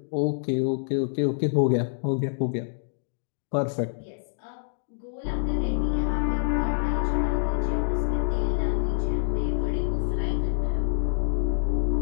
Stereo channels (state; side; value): silent; right; digital silence